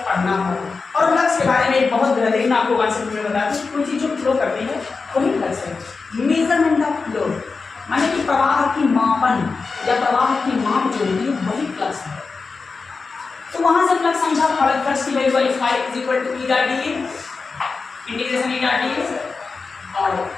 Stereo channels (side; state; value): right; quieter; 4.4 dB